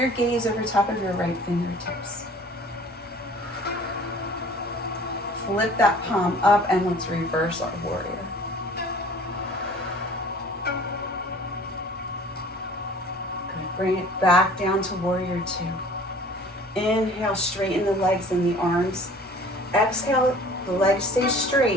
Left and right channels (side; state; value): both; normal; correlation 0.49